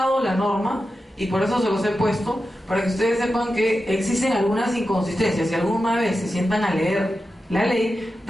la norma, y por eso se los he puesto, para que ustedes sepan que existen algunas inconsistencias. Si alguna vez se sientan a leer la ley,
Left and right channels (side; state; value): both; normal; correlation 0.91